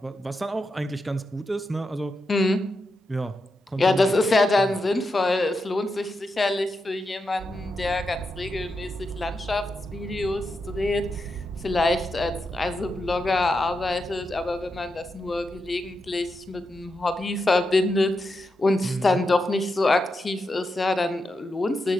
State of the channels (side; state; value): both; normal; correlation 0.86